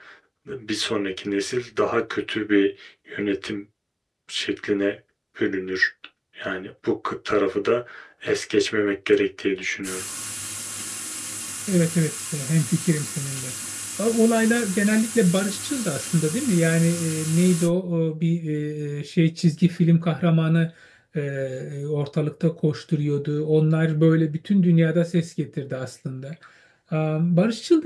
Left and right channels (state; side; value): identical; both; correlation 1.00